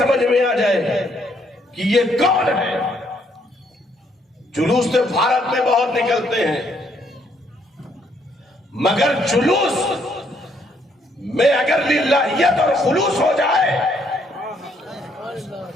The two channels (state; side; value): normal; both; correlation 0.70